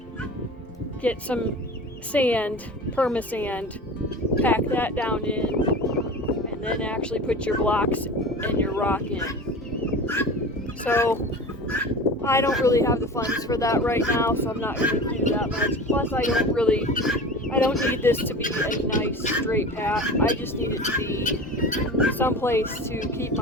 get some sand, perma-sand, pack that down in, and then actually put your blocks and your rock in. So I don't really have the funds for that right now, so I'm not going to do that much. Plus I don't need this to be a nice straight path. I just need it to be someplace to keep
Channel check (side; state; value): both; normal; correlation 0.34